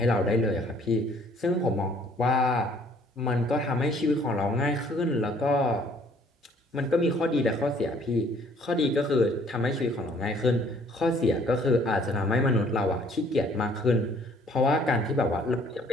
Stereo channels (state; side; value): normal; both; correlation 0.59